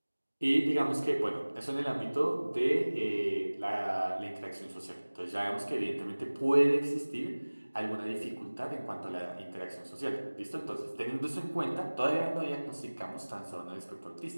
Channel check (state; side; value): inverted; both; correlation -1.00